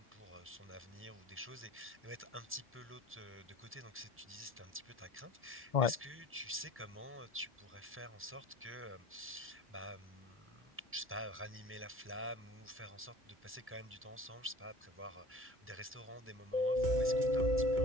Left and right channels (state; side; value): normal; both; correlation 0.44